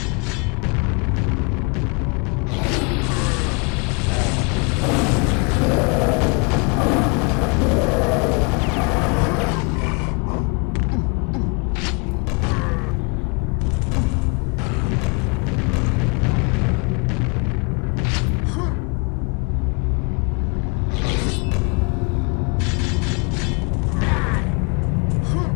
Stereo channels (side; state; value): right; quieter; 32.0 dB